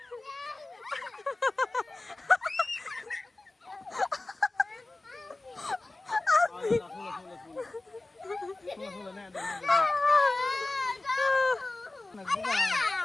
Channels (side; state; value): right; quieter; 3.0 dB